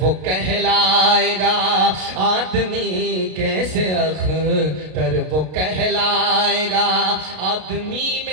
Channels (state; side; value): late; left; 33 ms